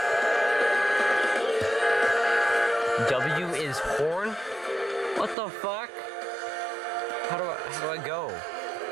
W is horn? What the fuck? How do I go?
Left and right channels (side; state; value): left; drops out; at 5.4 s